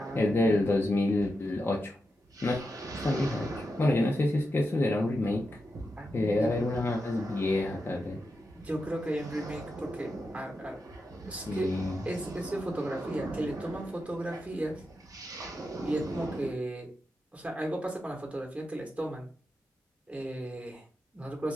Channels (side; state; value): both; normal; correlation 0.88